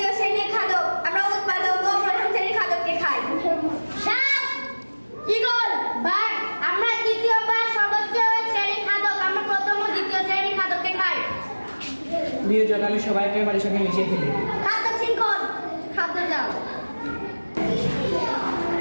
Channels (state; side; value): inverted; both; correlation -1.00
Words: শ্রেণীর খাদ্য, আমরা উৎপাদক ও প্রথম শ্রেণীর খাদ্যকে খাই। সাপ, ঈগল, বাঘ। আমরা তৃতীয় বা সর্বোচ্চ শ্রেণীর খাদ্য, আমরা প্রথম ও দ্বিতীয় শ্রেণীর খাদ্যকে খাই। বিয়োজক, আমি সবাইকে বাড়ির সঙ্গে মিশিয়ে ফেলি। খাদ্য শৃঙ্খল, খাদ্য জাল।